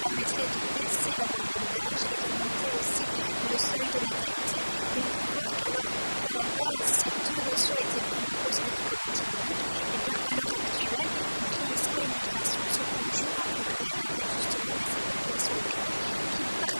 de baisser la moyenne d'âge et d'augmenter aussi le seuil de natalité. Et on peut voir qu'à la base, ces deux notions étaient vraiment considérées comme antinomiques, à l'heure actuelle, vieillissement et migration se conjuguent au pluriel avec justement ces populations migrantes qui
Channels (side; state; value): both; inverted; correlation -1.00